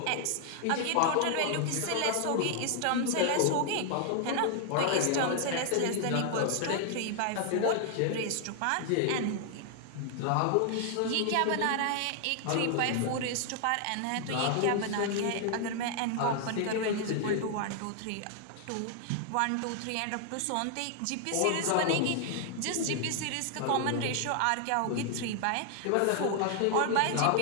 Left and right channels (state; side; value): different; both; correlation 0.00